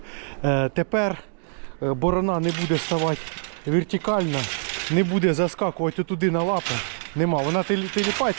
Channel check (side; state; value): left; silent; digital silence